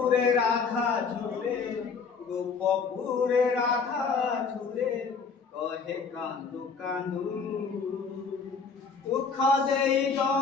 রাধা ঝুরে গোপপুরে রাধা ঝুরে কহে কান্দু কান্দু দুঃখ দেই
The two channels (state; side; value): quieter; right; 5.3 dB